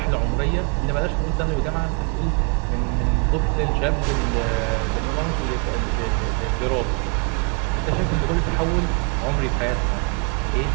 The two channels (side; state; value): left; quieter; 35.8 dB